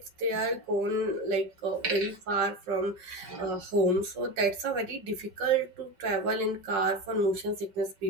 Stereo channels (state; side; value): late; left; 5.5 ms